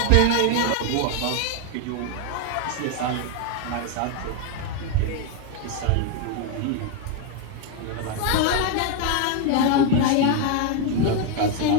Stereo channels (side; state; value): both; different; correlation 0.01